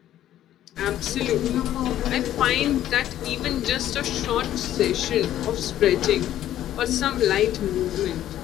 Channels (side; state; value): right; quieter; 12.3 dB